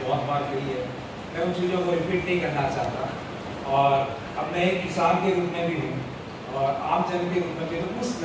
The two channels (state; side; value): identical; both; correlation 1.00